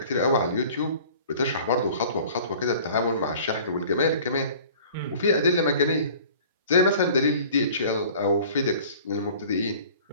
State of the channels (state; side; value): inverted; both; correlation -0.47